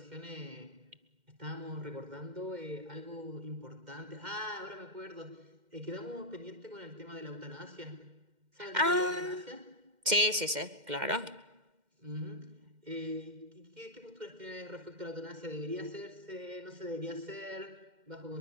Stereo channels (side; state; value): left; late; 2.1 ms